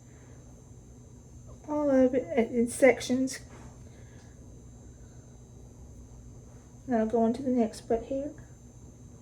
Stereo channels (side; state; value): both; identical; correlation 1.00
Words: all of it in sections. Now go on to the next butt hair.